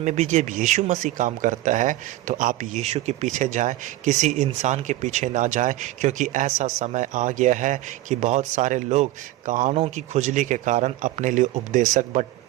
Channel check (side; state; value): left; quieter; 16.1 dB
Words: भी जब यीशु मसीह काम करता है तो आप यीशु के पीछे जाएं, किसी इंसान के पीछे ना जाएं, क्योंकि ऐसा समय आ गया है कि बहुत सारे लोग कानों की खुजली के कारण अपने लिए उपदेशक